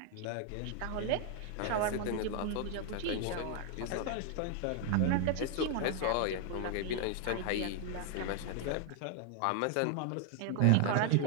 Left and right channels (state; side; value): different; both; correlation 0.00